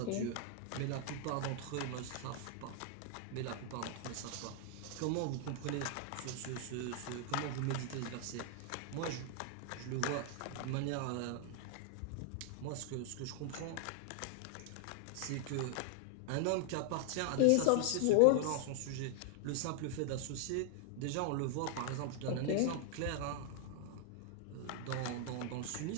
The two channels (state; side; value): different; both; correlation 0.00